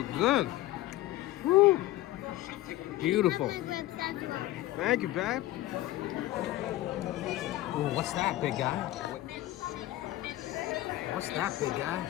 good. Woo. Beautiful. Thank you, Bab. Oh, what's that, big guy? What's that, big guy?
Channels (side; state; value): right; quieter; 15.9 dB